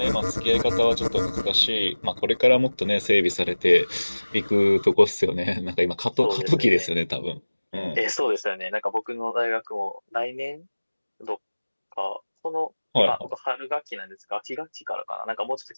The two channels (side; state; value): both; inverted; correlation -1.00